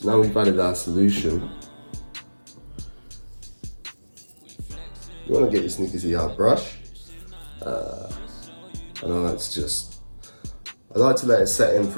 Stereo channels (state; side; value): inverted; both; correlation -1.00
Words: now we've added our solution. You want to get your Sneakers ER brush. And I like to let it set in